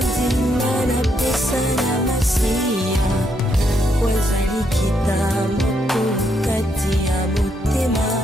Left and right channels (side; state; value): both; normal; correlation 0.76